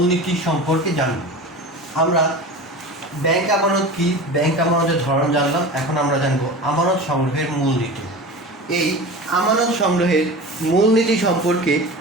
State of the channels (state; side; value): normal; both; correlation 0.32